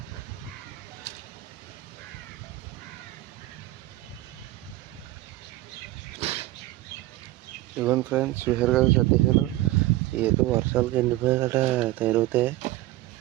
ఇవ్వండి ఫ్రెండ్స్, చూసారు కదా సర్దేశాను. ఏదో వర్షాలకు ఎండిపోయి గట్రా తయారవుతాయి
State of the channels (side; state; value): left; quieter; 17.2 dB